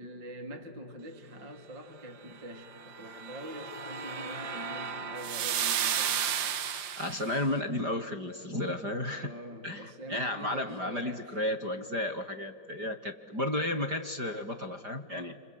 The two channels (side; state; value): left; late; 5.0 ms